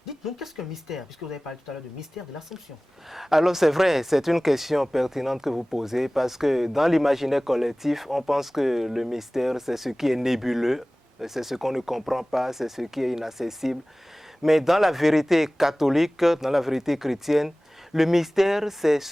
dites-nous, qu'est-ce qu'un mystère? Puisque vous avez parlé tout à l'heure de mystère de l'Assomption. Alors c'est vrai, c'est une question pertinente que vous posez, parce que dans l'imaginaire collectif, on pense que le mystère, c'est ce qui est nébuleux, c'est ce qu'on ne comprend pas, c'est ce qui est inaccessible. Mais dans la vérité catholique, dans la vérité chrétienne, le mystère, c'est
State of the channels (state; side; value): normal; both; correlation 0.98